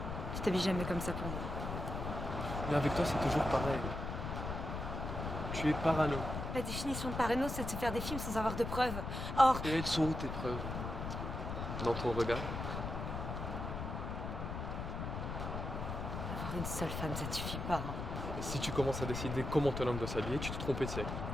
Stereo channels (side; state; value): left; noise; rumble, 4 dB below the sound